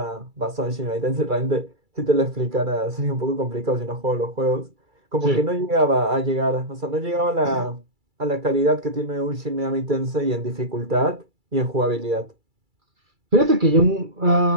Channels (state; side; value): late; left; 2.3 ms